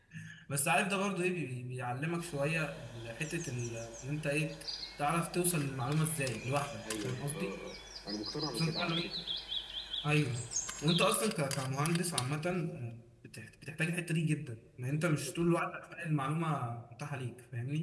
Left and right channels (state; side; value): identical; both; correlation 1.00